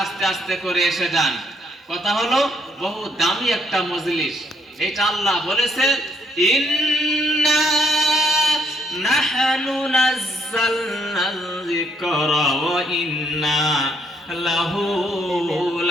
আস্তে আস্তে করে এসে যান। কথা হলো, বহু দামি একটা মজলিস, এটা আল্লাহ বলেছে, ইন্না নাহনু নাযালনাল যিকরা ওয়া ইন্না লাহু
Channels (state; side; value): normal; both; correlation 0.71